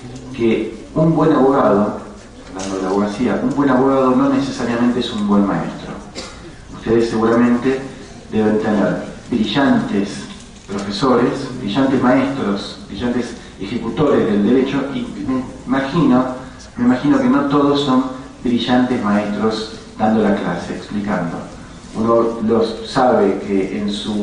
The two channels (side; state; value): both; identical; correlation 1.00